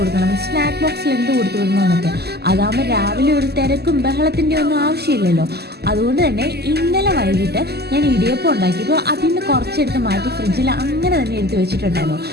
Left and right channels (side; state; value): left; late; 0.47 ms